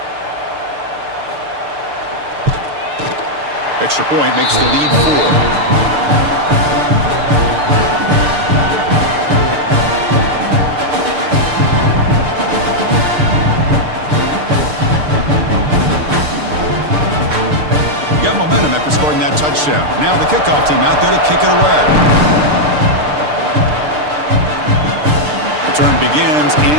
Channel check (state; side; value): late; left; 6.7 ms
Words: Extra point makes the lead 4. Got momentum after scoring that touchdown. Now the kickoff team out there to kick it away. Return begins